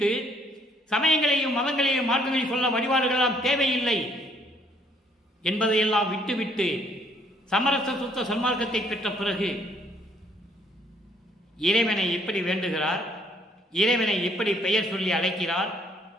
சமயங்களையும் மதங்களையும் மார்க்கங்களையும் சொல்ல வழிபாடுகளெல்லாம் தேவையில்லை என்பதையெல்லாம் விட்டுவிட்டு சமரச சுத்த சன்மார்க்கத்தை பெற்ற பிறகு இறைவனை எப்படி வேண்டுகிறார், இறைவனை எப்படி பெயர் சொல்லி அழைக்கிறார்,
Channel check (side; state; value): both; normal; correlation 0.65